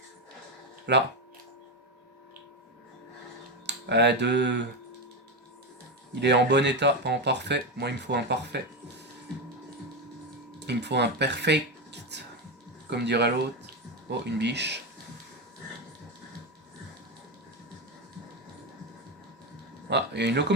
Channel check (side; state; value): both; normal; correlation 0.12